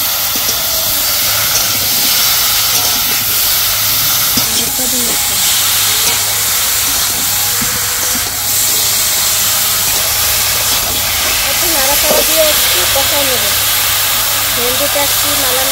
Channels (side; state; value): both; identical; correlation 1.00